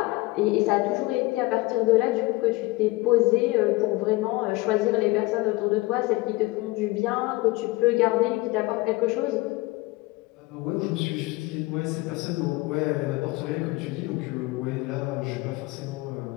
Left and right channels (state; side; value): quieter; right; 21.9 dB